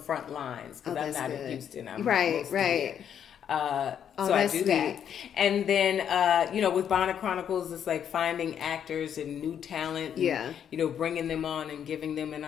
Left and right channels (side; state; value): right; quieter; 8.8 dB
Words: lines, because I'm not in Houston. I'm right. Here. So I do that. And then, with Bonnet Chronicles, it's like finding actors and new talent and, bringing them on and giving them an